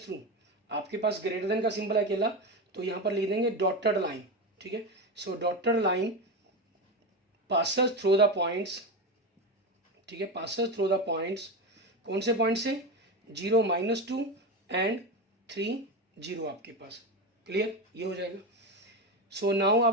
थ्रू, आपके पास ग्रेटर देन का सिंबल है अकेला, तो यहाँ पर लिख देंगे डॉटेड लाइन, ठीक है। So dotted line passes through the points, ठीक है, पासेस थ्रू द पॉइंट्स, कौन से पॉइंट से, 0 -2 एंड 3 0 आपके पास, क्लियर, ये हो जाएगा। सो नाउ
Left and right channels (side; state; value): both; normal; correlation 0.18